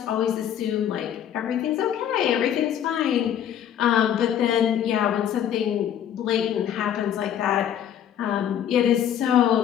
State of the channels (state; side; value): quieter; right; 9.9 dB